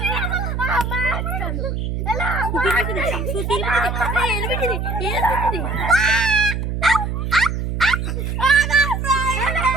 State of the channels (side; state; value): right; noise; hum, 2 dB below the sound